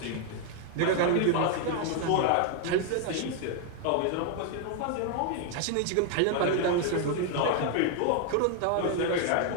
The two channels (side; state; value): both; different; correlation 0.00